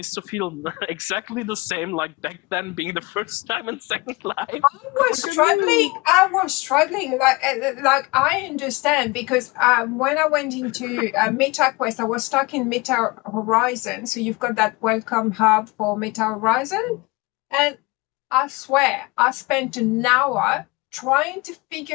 to feel exactly the same like back then being the first time in Second Life? I was struggling. Like I understand because when I went into Meta Quest, I was stuck in Meta Horizon. So you've got that welcome hub for Meta Horizon, and I swear I spent an hour trying to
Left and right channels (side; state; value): right; quieter; 24.9 dB